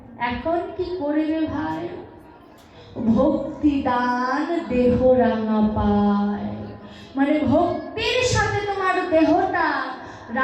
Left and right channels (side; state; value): both; identical; correlation 1.00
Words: এখন কি করবে ভাই। ভক্তি দান দেহ রাঙা পায়, মানে ভক্তির সাথে তোমার দেহটা